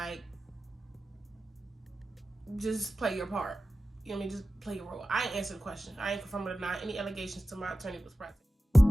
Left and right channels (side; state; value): both; normal; correlation 0.94